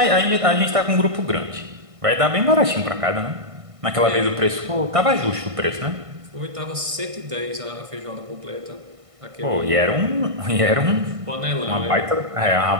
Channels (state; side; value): late; left; 1.5 ms